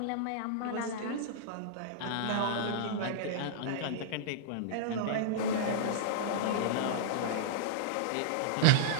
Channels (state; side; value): different; both; correlation -0.02